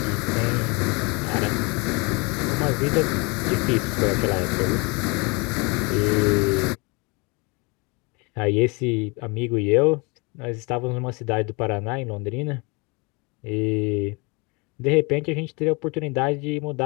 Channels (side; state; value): right; quieter; 29.1 dB